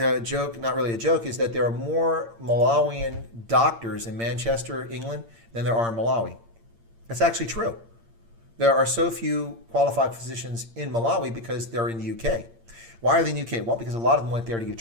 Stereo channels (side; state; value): left; late; 8.7 ms